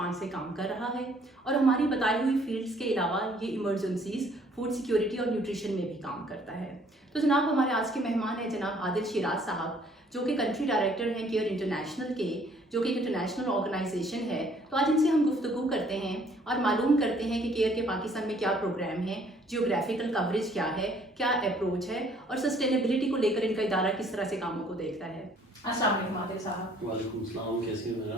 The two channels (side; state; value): both; normal; correlation 0.61